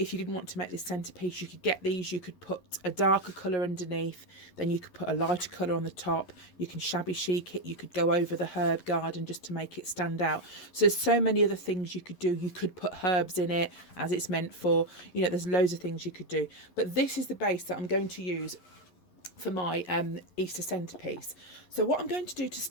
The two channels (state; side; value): late; right; 11 ms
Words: you didn't want to make this centerpiece, you could get these, you could put a darker colour underneath, then you could put a lighter colour on the top, you can shabby chic it, you could go over the herb garden just to make it stand out. So there's so many other things you could do. You could put herbs in it as it's meant for, there's loads of things you could do. But this is the base that I'm going to use for my Easter centerpiece. So what I'm going to do to